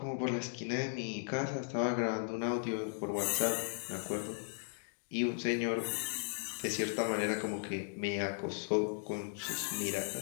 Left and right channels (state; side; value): silent; right; digital silence